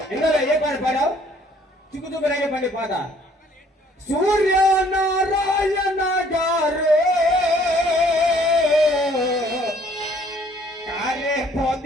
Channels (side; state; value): both; normal; correlation 0.60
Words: ఇందులో ఏ పాట పాడావు చిక్కుచుక్కు రేగే పండి పాట సూర్యనారాయణ గారు కారే